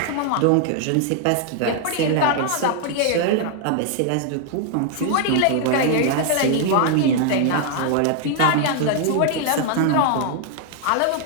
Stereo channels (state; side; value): different; both; correlation 0.00